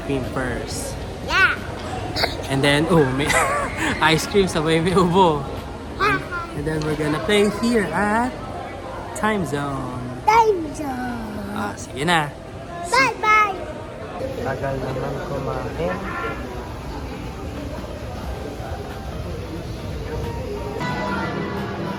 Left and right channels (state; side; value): identical; both; correlation 1.00